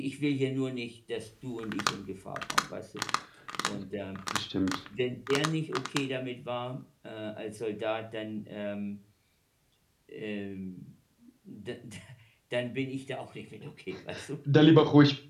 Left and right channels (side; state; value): both; identical; correlation 1.00